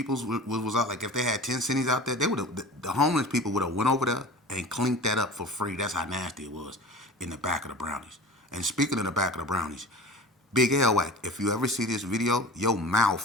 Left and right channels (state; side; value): normal; both; correlation 0.38